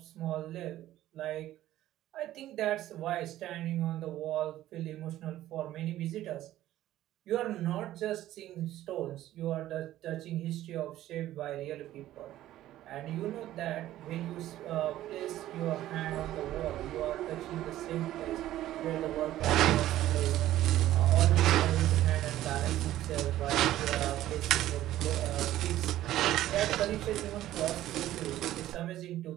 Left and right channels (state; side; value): quieter; left; 14.0 dB